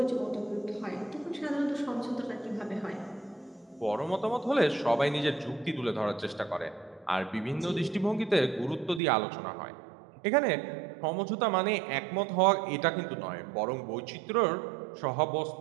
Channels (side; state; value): left; drops out; at 9.0 s